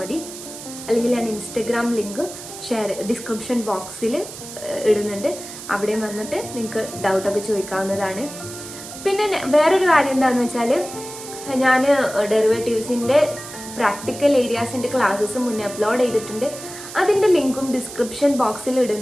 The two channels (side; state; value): right; noise; hiss, 12 dB below the sound